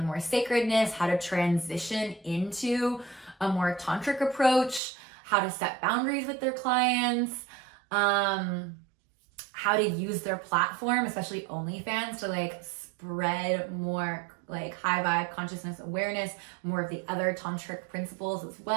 more sacredness, how to transition into a more tantric approach, how to set boundaries with their clients, how to use their platform, especially OnlyFans, to like spread more like high vibe consciousness awareness, more of the other tantric principles as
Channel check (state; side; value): drops out; left; at 4.8 s